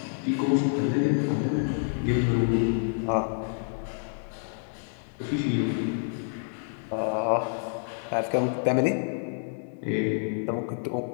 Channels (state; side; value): silent; right; 59 dB below the other